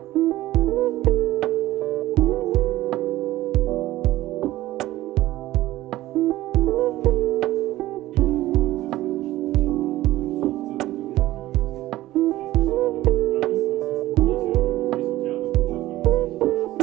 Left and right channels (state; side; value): quieter; left; 16.1 dB